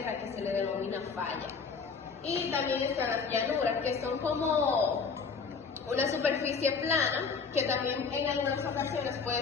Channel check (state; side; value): quieter; right; 5.3 dB